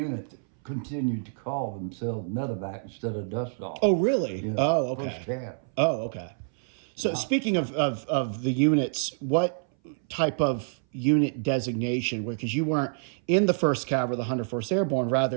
that continued to call themselves medevac instead of dust off. Oh, really? Yeah, Oh, okay. First cab. Oh, okay. So speaking of the units, what type of unit designation? Because you weren't in the 1st Cav or the 104th Airborne,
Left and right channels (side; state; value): left; silent; 59 dB below the other